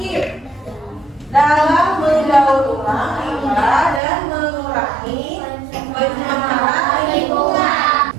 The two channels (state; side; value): drops out; left; at 4.0 s